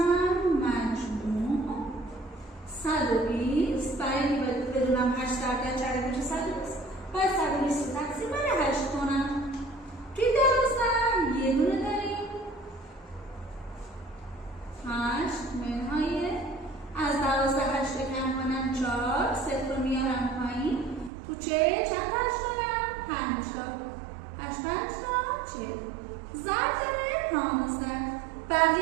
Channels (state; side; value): drops out; left; at 21.1 s